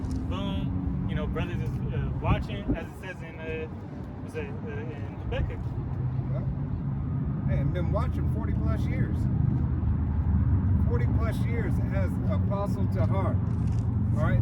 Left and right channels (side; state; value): both; identical; correlation 1.00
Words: Boom. You know, brothers is watching, as it says in in Habakkuk. Well, Hey, I've been watching 40 plus years. 40 plus years as Apostle Tahar. All